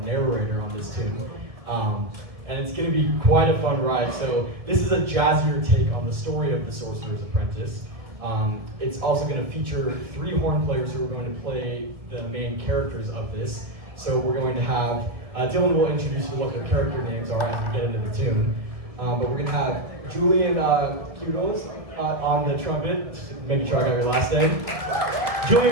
on this tune. And it's going to be quite a fun ride. So this is a jazzier take on the story of the Sorcerer's Apprentice. It's also going to feature 3 horn players who are going to play the main characters of this. So we're going to have, Dylan will introduce you what their character names are as we get into the tune. But we're going to have Julian Kudos on the trumpet, just making sure I got your last name.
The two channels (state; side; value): late; left; 1.7 ms